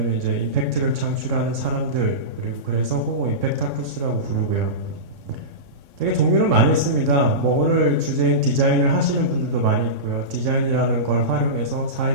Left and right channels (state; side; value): late; left; 3.6 ms